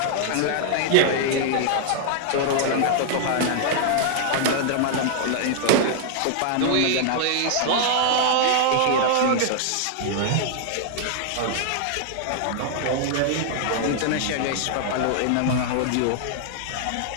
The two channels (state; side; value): different; both; correlation -0.01